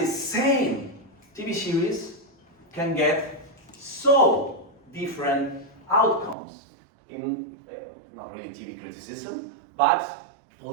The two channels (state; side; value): drops out; left; at 6.4 s